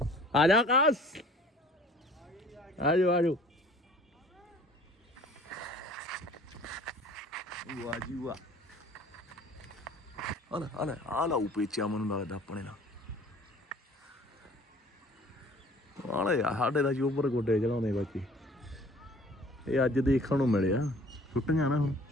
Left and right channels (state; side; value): normal; both; correlation 0.51